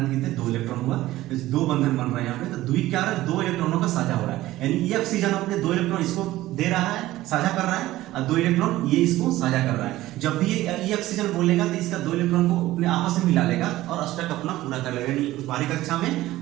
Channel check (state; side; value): quieter; left; 16.2 dB